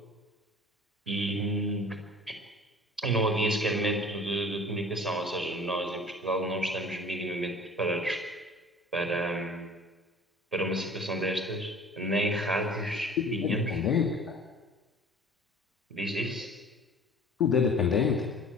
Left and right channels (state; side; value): normal; both; correlation 0.46